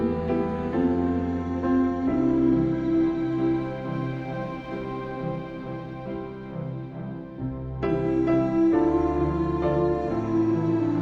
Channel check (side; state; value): both; identical; correlation 1.00